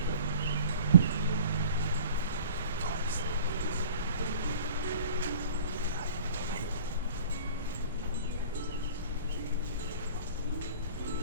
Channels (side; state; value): both; inverted; correlation -0.44